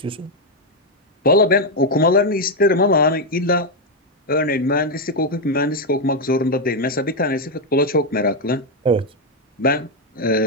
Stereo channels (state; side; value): normal; both; correlation 0.03